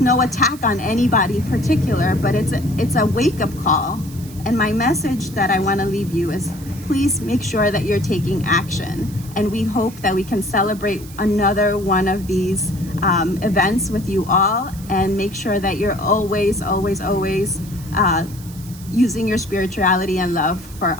no attack on anybody particular, but it's a wake-up call. And my message that I want to leave you is please make sure that you're taking action And we hope that we can celebrate another one of these events with you all, and make sure that you're always, always, always using your spirituality and love for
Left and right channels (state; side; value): noise; right; hiss, 19 dB below the sound